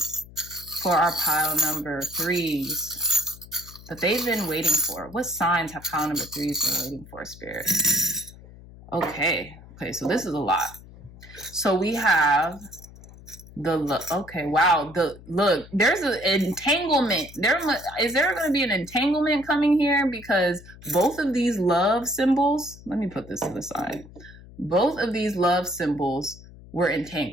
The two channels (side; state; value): left; noise; hum, 19 dB below the sound